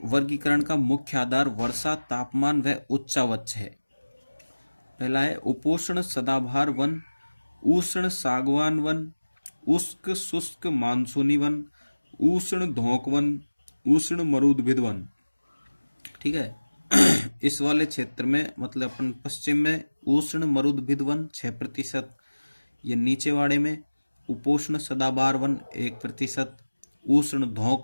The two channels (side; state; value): both; inverted; correlation -1.00